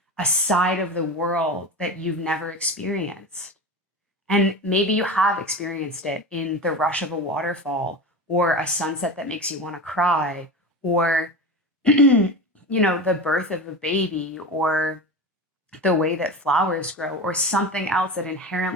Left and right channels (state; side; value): normal; both; correlation 0.27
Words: a side of the world that you've never experienced. And maybe you have experienced it in the rush of a waterfall or a sunset that makes you want to cry or the birth of a baby or the way that flowers grow or something else that